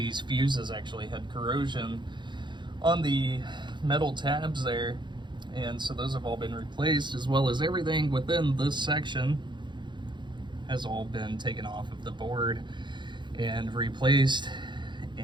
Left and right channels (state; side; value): late; left; 0.22 ms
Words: fuses actually had corrosion on the metal tabs there, and so those have all been replaced, as well as everything within this section has all been taken off of the board and replaced.